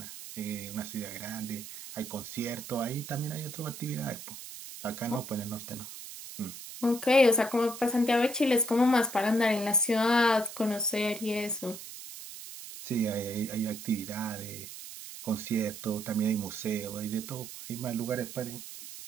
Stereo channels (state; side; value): noise; right; hiss, 12 dB below the sound